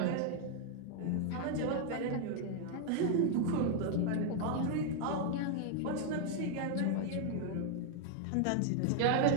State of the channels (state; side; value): different; both; correlation 0.00